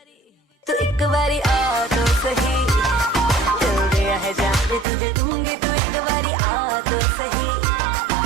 एक बारी आ तो सही, दिल दिया है जान भी तुझे दूंगी, तू एक बारी आ तो सही,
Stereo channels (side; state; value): left; drops out; at 4.9 s